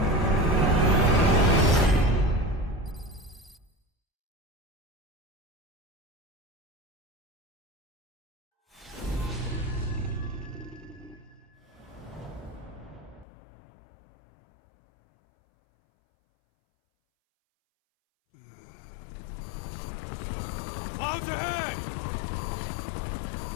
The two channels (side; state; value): right; drops out; at 13.2 s